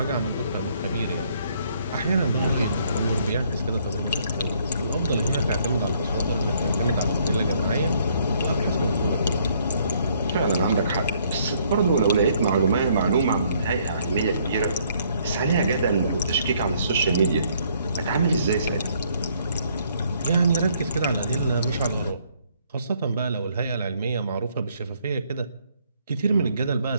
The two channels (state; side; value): inverted; both; correlation -0.67